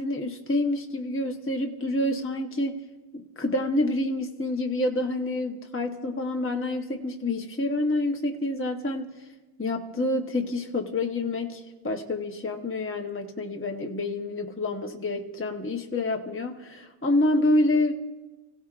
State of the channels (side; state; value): both; normal; correlation 0.44